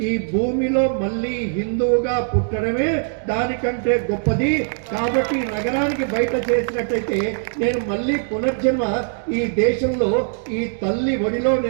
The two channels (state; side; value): silent; left; digital silence